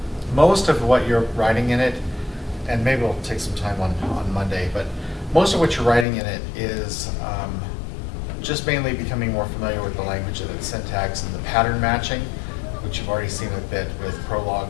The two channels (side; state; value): right; drops out; at 6.1 s